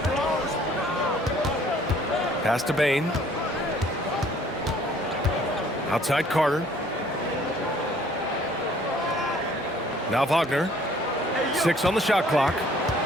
Pass to Bain. Outside Carter. Now Wagner. 6 on the shot clock.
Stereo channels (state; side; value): normal; both; correlation 0.58